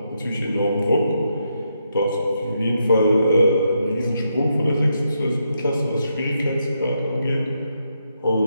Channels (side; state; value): both; inverted; correlation -0.80